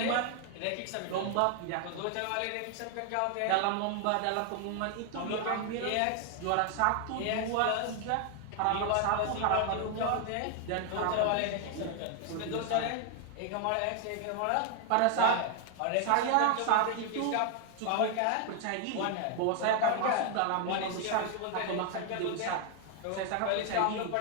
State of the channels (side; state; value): both; different; correlation 0.00